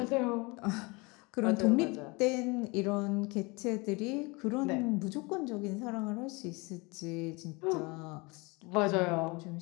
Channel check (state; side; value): quieter; right; 26.9 dB